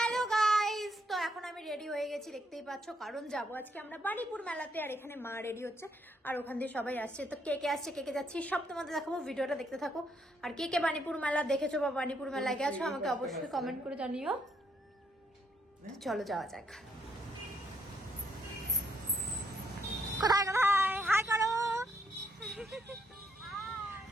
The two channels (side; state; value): both; normal; correlation 0.74